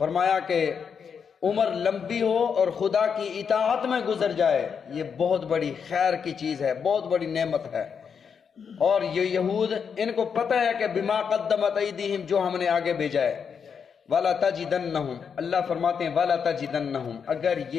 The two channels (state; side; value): quieter; right; 6.6 dB